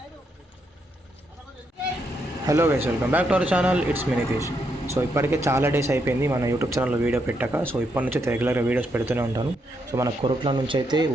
guys, welcome back to our channel. It's me Nitish. So ఇప్పటికే చాలా days అయిపోయింది మన యూట్యూబ్ ఛానల్లో వీడియో పెట్టాక. సో ఇప్పటి నుంచి రెగ్యులర్గా వీడియోస్ పెడుతూనే ఉంటాను. సో మన కొరుట్ల నుంచి అయితే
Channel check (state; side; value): normal; both; correlation 0.79